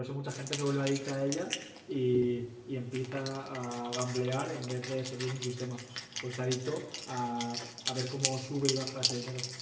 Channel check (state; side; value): identical; both; correlation 1.00